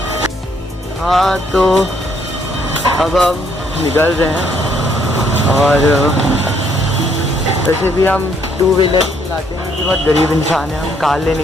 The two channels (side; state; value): both; normal; correlation 0.69